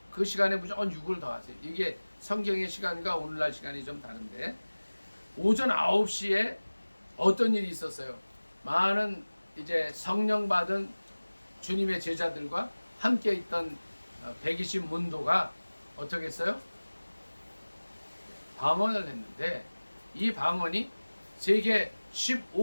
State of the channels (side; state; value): both; inverted; correlation -1.00